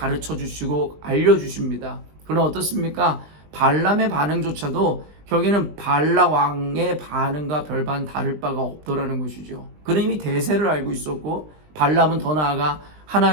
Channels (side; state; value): left; late; 20 ms